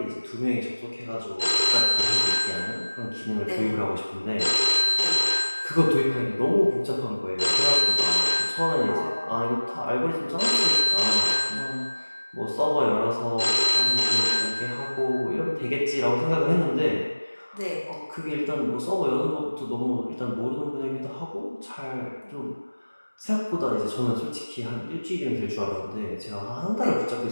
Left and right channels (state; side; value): inverted; both; correlation -1.00